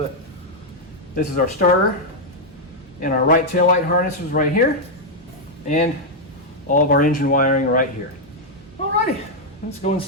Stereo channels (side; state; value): both; normal; correlation -0.02